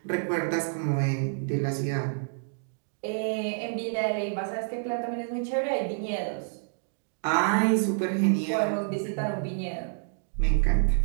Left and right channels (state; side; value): silent; left; digital silence